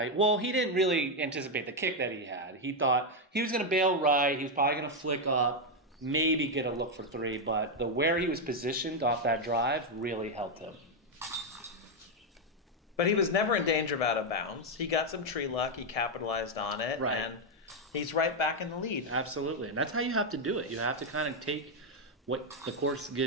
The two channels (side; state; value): both; normal; correlation 0.03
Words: Well, he didn't really anticipate the kick that he had. He thought he was going to bail right. He was probably going to flick up, maybe get a look for 3. But where he was positioned off that drive really helped him. But he was never in danger of out of bounds. He got some tree luck. He capitalized on it. Right. And he's right back in the lead. Absolutely. And that's how you have to do it. You have to kind of take what the course